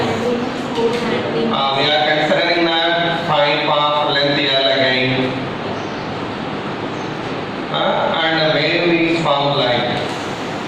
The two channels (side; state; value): both; identical; correlation 1.00